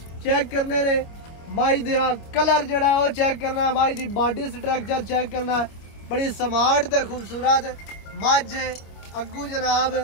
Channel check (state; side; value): late; right; 25 ms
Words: चेक करने ने। मझ दा कलर जड़ा वो चेक करना। मझ दी बॉडी स्ट्रक्चर चेक करना। बड़ी स्मार्ट ते खूबसूरत मझ। अगू जनाब